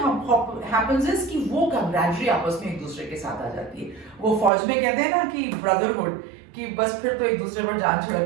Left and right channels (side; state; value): left; drops out; at 4.5 s